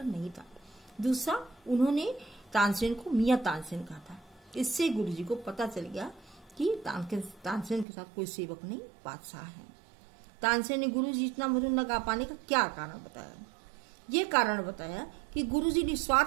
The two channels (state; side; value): drops out; left; at 7.9 s